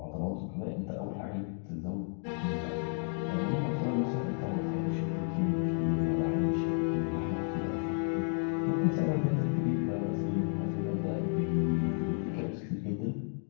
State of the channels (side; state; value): right; silent; 56 dB below the other